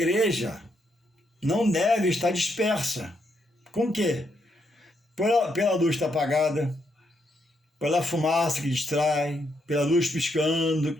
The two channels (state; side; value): normal; both; correlation 0.78